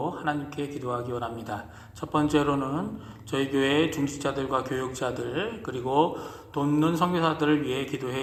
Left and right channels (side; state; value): both; identical; correlation 1.00